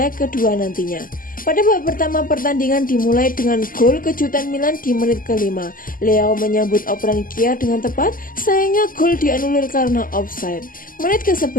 kedua nantinya. Pada babak pertama pertandingan dimulai dengan gol kejutan Milan di menit ke-5. Leao menyambut operan Kjaer dengan tepat, sayangnya gol dianulir karena offside. Menit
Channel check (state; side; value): late; right; 0.41 ms